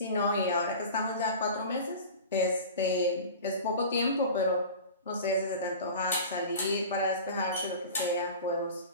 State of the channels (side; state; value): both; inverted; correlation -0.36